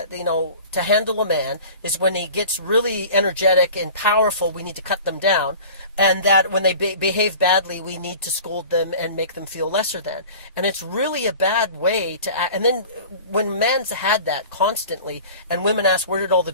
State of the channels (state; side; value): inverted; both; correlation -0.41